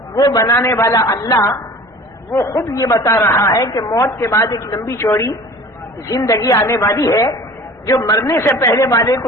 وہ بنانے والا اللہ وہ خود یہ بتا رہا ہے کہ موت کے بعد ایک لمبی چوڑی زندگی آنے والی ہے، جو مرنے سے پہلے والے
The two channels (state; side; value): normal; both; correlation 0.43